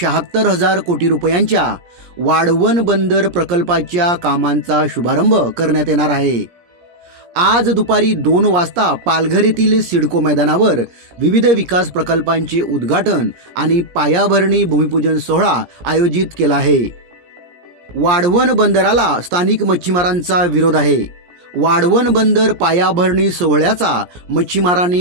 कोटी रुपयांच्या वाढवण बंदर प्रकल्पाच्या कामांचा शुभारंभ करण्यात येणार आहे। आज दुपारी 2 वाजता पालघर येथील सिडको मैदानावर विविध विकास प्रकल्पांचे उद्घाटन आणि पायाभरणी भूमिपूजन सोहळा आयोजित केला आहे। वाढवण बंदराला स्थानिक मच्छीमारांचा विरोध आहे। वाढवण बंदर पायाभरणी सोहळ्याचा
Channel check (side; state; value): left; late; 17 ms